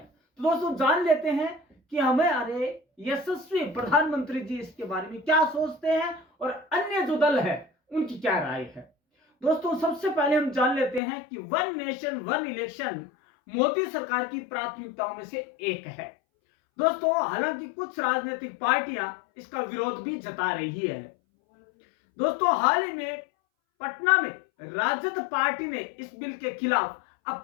तो दोस्तों जान लेते हैं कि हमारे यशस्वी प्रधानमंत्री जी इसके बारे में क्या सोचते हैं और अन्य जो दल है उनकी क्या राय है। दोस्तों सबसे पहले हम जान लेते हैं कि one nation one election Modi सरकार की प्राथमिकताओं में से एक है। दोस्तों हालांकि कुछ राजनीतिक पार्टियां इसका विरोध भी जता रही है। दोस्तों हाल ही में पटना में राजद पार्टी ने इस बिल के खिलाफ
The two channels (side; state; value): right; drops out; at 11.0 s